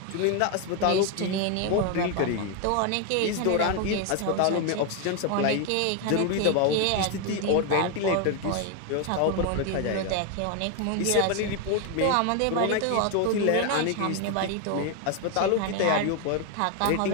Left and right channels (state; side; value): different; both; correlation 0.01